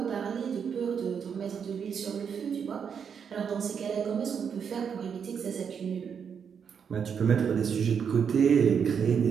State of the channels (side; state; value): left; quieter; 7.1 dB